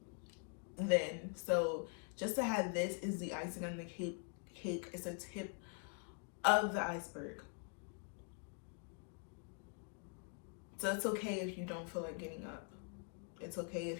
then. So just to have this is the icing on the cake. It's a tip of the iceberg. So it's okay if you don't feel like getting up. It's okay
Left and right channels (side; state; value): right; quieter; 38.4 dB